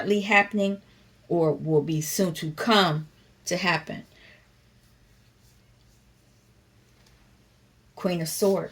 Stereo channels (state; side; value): identical; both; correlation 1.00